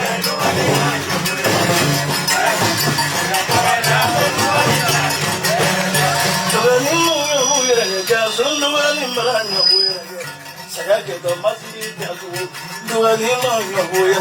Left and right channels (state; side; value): identical; both; correlation 1.00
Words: Duani no nyabuerage. Jason duani mara nyabuerage. Saya ke to masjid jago. Duani no